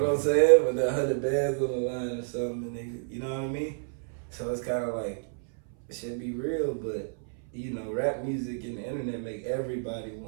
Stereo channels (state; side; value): silent; left; 58 dB below the other